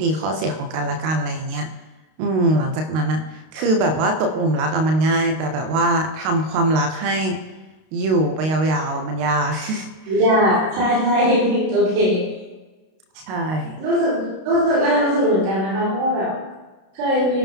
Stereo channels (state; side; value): late; left; 32 ms